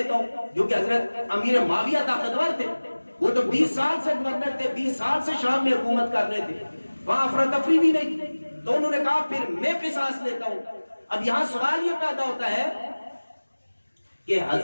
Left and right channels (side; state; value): both; inverted; correlation -1.00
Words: ہوں، جو کہ حضرت امیر معاویہ طاقتور تھے، وہ تو 20 سال سے گورنر تھے، 20 سال سے شام میں حکومت کر رہے تھے، وہاں افراتفری بھی نہیں تھی، تو انہوں نے کہا پھر میں قصاص لیتا ہوں۔ اب یہاں سوال یہ پیدا ہوتا ہے کہ